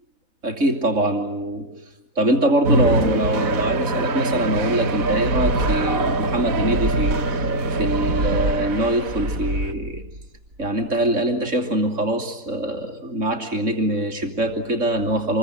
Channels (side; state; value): left; late; 3.6 ms